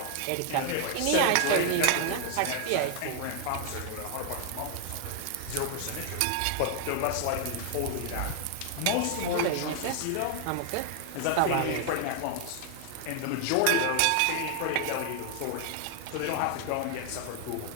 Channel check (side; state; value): both; different; correlation 0.00